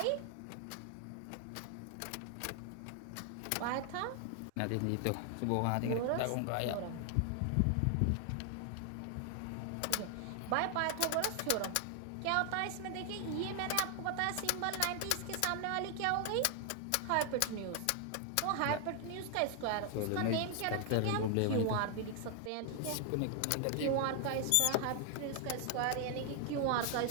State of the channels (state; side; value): different; both; correlation 0.00